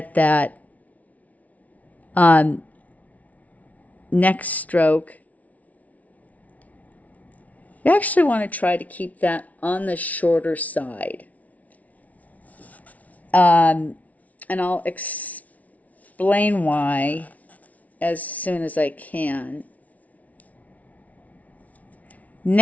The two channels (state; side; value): late; right; 0.070 ms